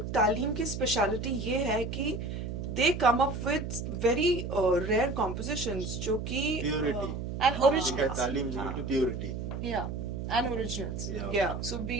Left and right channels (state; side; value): noise; right; hum, 5 dB below the sound